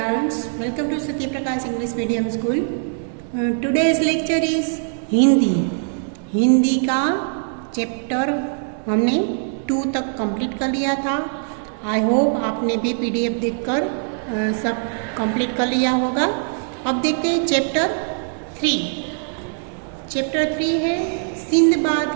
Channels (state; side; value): silent; left; 65 dB below the other